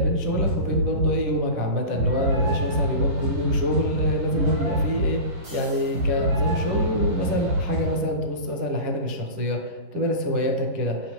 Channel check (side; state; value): left; late; 10 ms